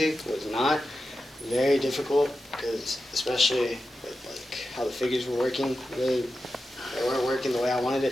It was not. Very difficult because especially with like how the figures were working, really they weren't working the way I wanted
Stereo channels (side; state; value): both; normal; correlation 0.91